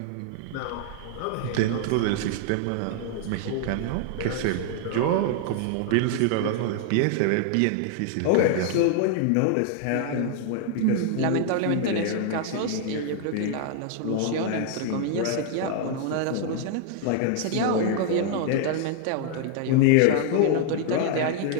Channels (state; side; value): different; both; correlation 0.00